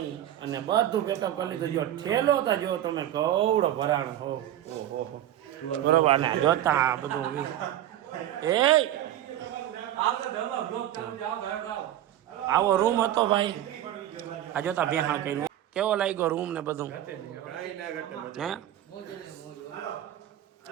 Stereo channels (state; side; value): quieter; left; 12.2 dB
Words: અને બધું પેકઅપ કરી લીધું જો ઠેલો તો જો તમે કવડો ભરાણો હો ઓહો બરોબર ને જોતા બધું એ આવો રૂમ હતો ભાઈ આ જોતા બેહા કર્યું કેવો લાગ્યો રૂમ ને બધું હે